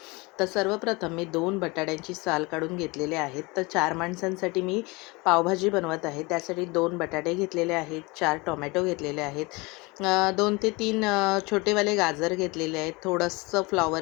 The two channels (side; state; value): right; quieter; 25.5 dB